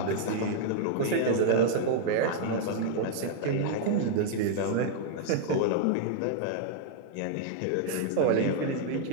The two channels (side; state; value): both; different; correlation -0.01